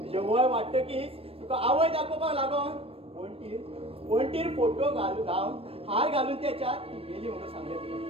वय वाडटकीच तुका आवय दाखोवपाक लागून वणटीर फोटो लावन हार घालून त्याच्यात ती गेली म्हणून सांगलें तुका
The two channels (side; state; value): left; late; 0.28 ms